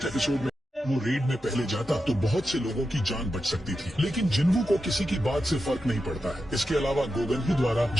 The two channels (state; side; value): normal; both; correlation 0.89